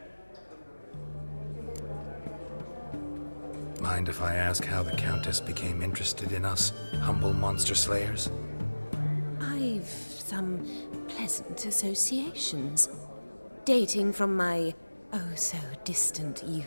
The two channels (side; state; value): both; inverted; correlation -1.00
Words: Mind if I ask how the Countess became interested in us, humble monster slayers? I've some pleasant associations, dating from my oh-so-distant